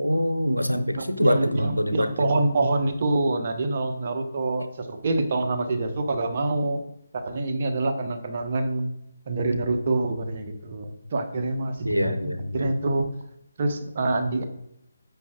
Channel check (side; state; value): both; inverted; correlation -0.89